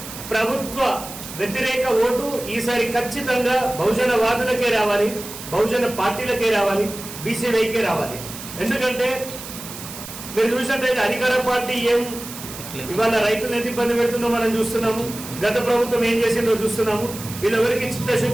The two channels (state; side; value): noise; right; hiss, 12 dB below the sound